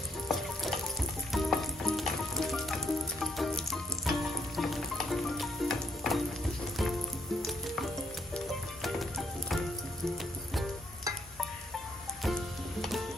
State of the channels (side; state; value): both; normal; correlation 0.73